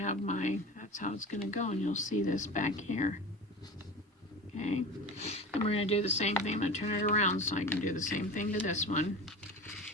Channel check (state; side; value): normal; both; correlation 0.32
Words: that's how it's going to go. And you'll see this back here. Okay. And we're going to do the same thing. I'm going to turn it around so I can do the same thing to this one.